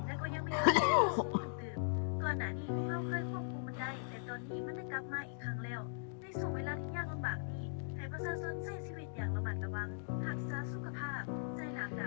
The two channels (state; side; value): silent; right; digital silence